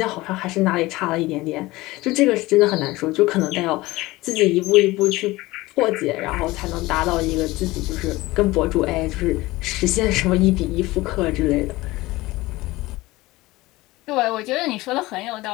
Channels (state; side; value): quieter; right; 19.7 dB